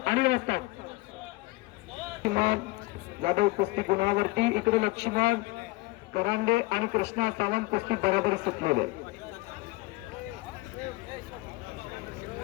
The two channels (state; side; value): quieter; right; 21.6 dB